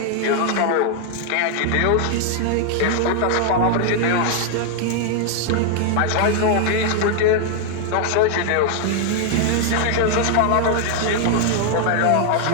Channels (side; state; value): both; different; correlation 0.00